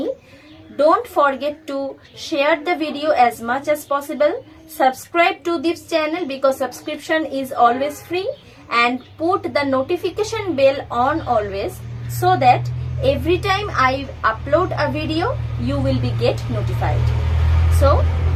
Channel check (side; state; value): both; identical; correlation 1.00